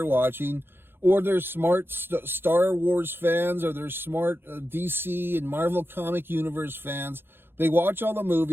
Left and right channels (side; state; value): left; late; 0.10 ms